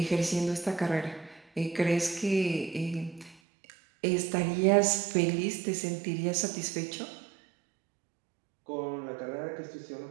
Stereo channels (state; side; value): drops out; left; at 3.4 s